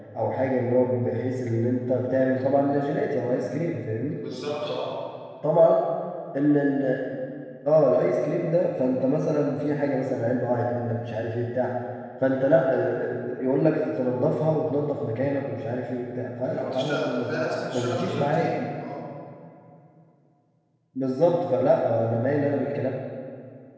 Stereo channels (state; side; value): identical; both; correlation 1.00